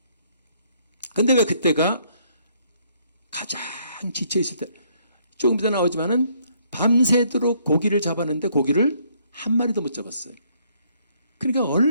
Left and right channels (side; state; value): both; inverted; correlation -0.67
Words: 근데 왜 그때가 가장 지쳐있을 때, 조금 이따 나오지만은 밤새도록 고기를 잡았는데 고기를 한 마리도 못 잡았어요. 그러니까